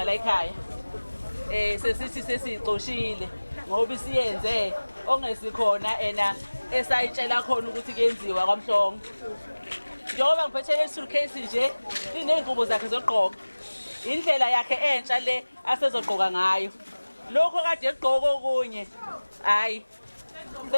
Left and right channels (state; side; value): inverted; both; correlation -1.00